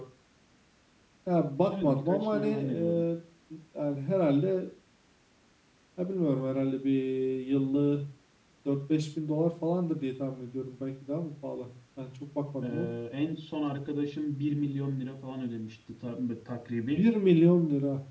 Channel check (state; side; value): identical; both; correlation 1.00